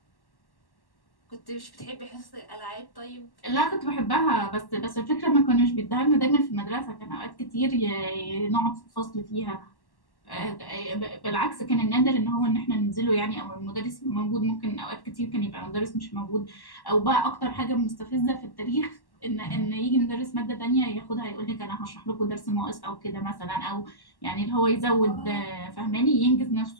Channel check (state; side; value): late; right; 1.1 ms